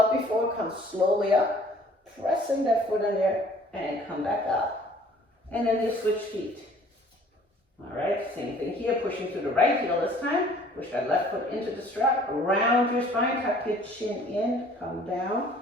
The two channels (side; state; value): both; normal; correlation 0.54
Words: before. Come slowly up. Pressing that foot in there and come back up. And then you switch feet. All right, same thing here. Pushing to the right heel this time. Push that left foot into the strap. Round your spine. Tuck your chin in. Come down.